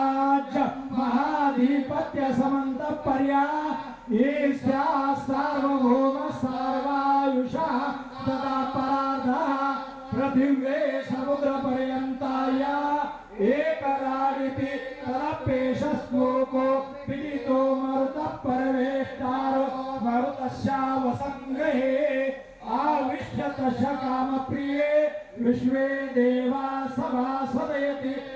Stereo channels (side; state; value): both; identical; correlation 1.00